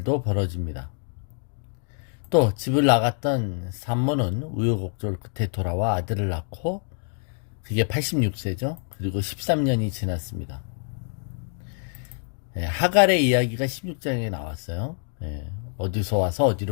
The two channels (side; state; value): right; silent; 61 dB below the other